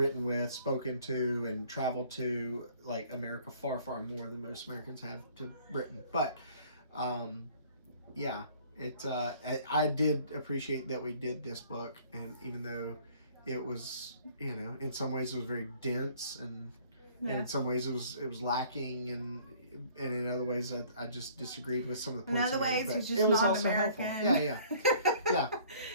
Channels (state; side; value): inverted; both; correlation -0.55